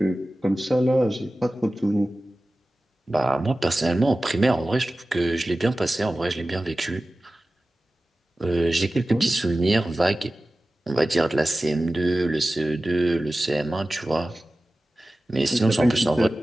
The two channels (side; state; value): both; normal; correlation 0.96